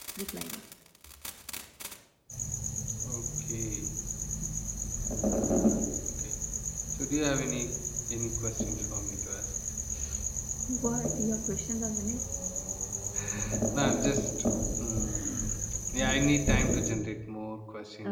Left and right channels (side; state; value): both; identical; correlation 1.00